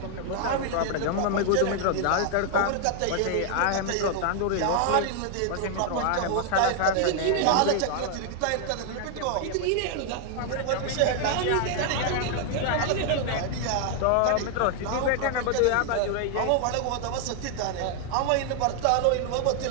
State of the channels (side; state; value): both; different; correlation 0.00